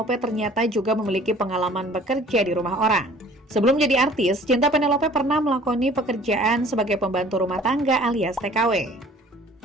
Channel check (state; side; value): normal; both; correlation 0.51